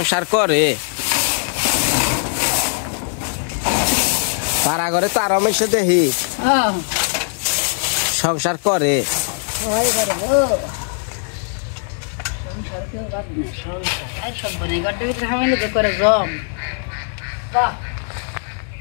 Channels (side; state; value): right; silent; 66 dB below the other